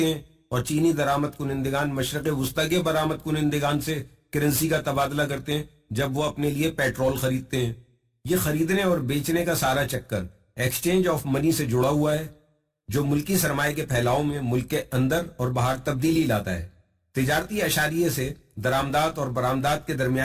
ہیں، اور چینی درآمد کنندگان مشرق وسطی کے برآمد کنندگان سے کرنسی کا تبادلہ کرتے ہیں جب وہ اپنے لیے پیٹرول خریدتے ہیں۔ یہ خریدنے اور بیچنے کا سارا چکر ایکسچینج آف منی سے جڑا ہوا ہے، جو ملکی سرمایہ کے پھیلاؤ میں ملک کے اندر اور باہر تبدیلی لاتا ہے۔ تجارتی اشاریے سے درآمدات اور برآمدات کے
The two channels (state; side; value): identical; both; correlation 1.00